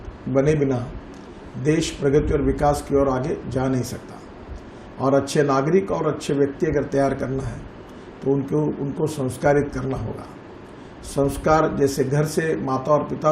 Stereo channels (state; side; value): identical; both; correlation 1.00